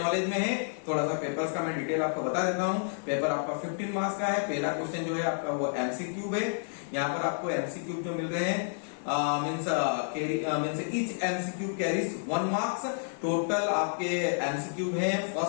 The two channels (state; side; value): silent; right; digital silence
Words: में है। थोड़ा सा पेपर्स का मैं डिटेल आपको बता देता हूं। पेपर आपका 15 मार्क्स का है। पहला क्वेश्चन जो है आपका वो MCQ है। यहाँ पर आपको MCQ जो मिल रहे हैं means each MCQ carries 1 marks. Total आपके MCQ है